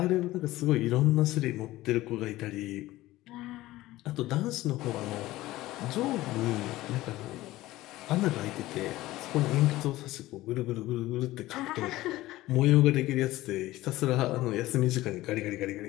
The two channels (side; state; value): right; quieter; 17.1 dB